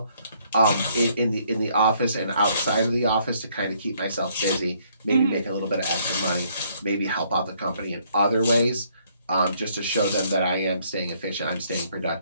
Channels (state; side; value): inverted; both; correlation -0.67